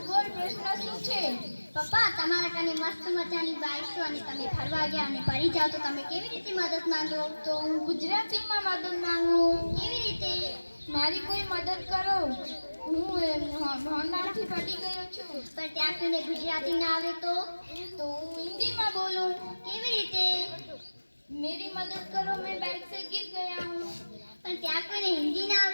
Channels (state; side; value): inverted; both; correlation -1.00